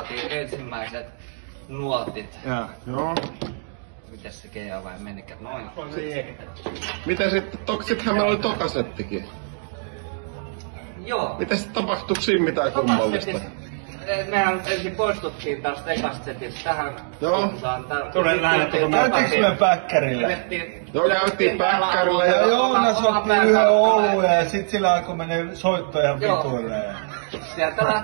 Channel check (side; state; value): left; silent; digital silence